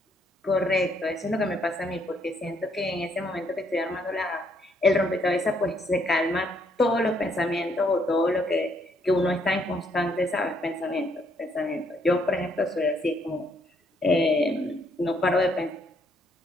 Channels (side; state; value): both; normal; correlation 0.70